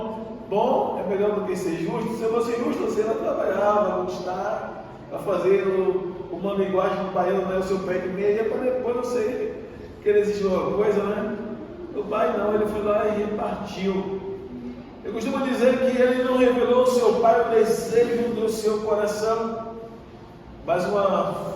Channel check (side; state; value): both; identical; correlation 1.00